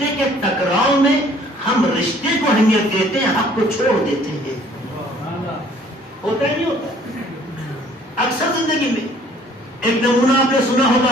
کے ٹکراؤ میں ہم رشتے کو اہمیت دیتے ہیں، حق کو چھوڑ دیتے ہیں۔ ہوتا ہی نہیں ہوتا اکثر زندگی میں۔ ایک نمونہ آپ نے سنا ہوگا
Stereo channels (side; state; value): both; normal; correlation 0.57